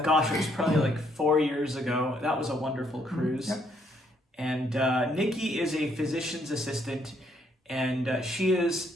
Gosh, it was probably like 4 years ago. That was a wonderful cruise. Yep. And Nikki is a physician's assistant, and she is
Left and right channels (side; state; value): both; normal; correlation 0.70